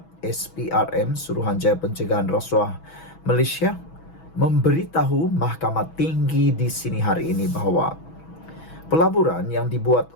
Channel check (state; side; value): late; right; 6.2 ms